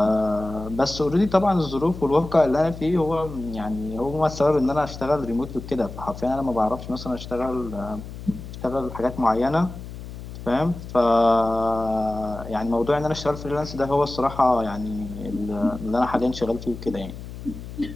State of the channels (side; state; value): left; noise; hum, 11 dB below the sound